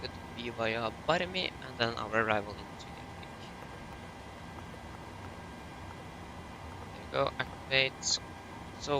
to be via Barmi and then our arrival into Gatwick. There you go, activate,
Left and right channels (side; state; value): both; identical; correlation 1.00